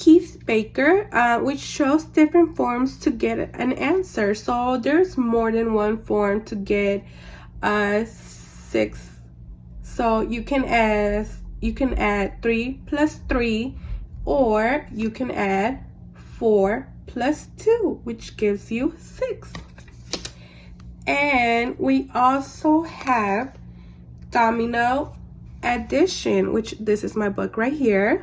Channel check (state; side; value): identical; both; correlation 1.00